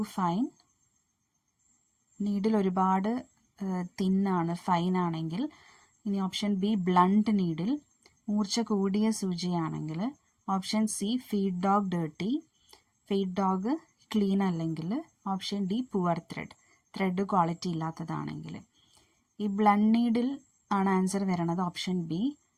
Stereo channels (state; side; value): identical; both; correlation 1.00